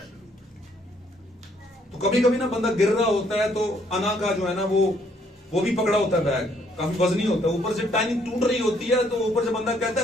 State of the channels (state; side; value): normal; both; correlation 0.67